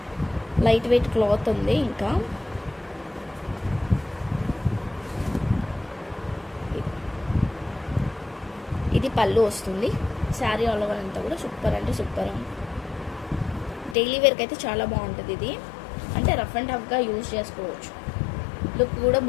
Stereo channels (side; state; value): right; drops out; at 14.0 s